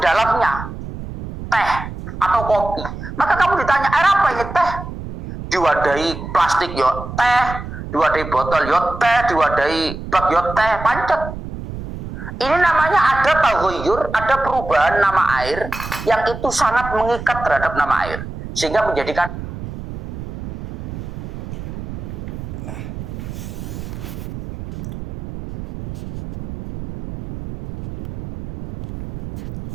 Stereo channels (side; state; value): right; noise; rumble, 9 dB below the sound